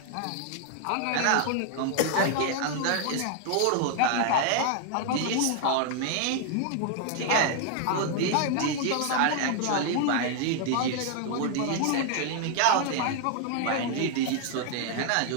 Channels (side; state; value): both; different; correlation 0.00